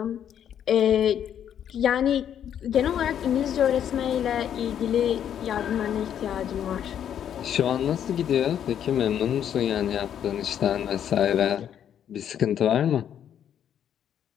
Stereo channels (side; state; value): right; quieter; 9.5 dB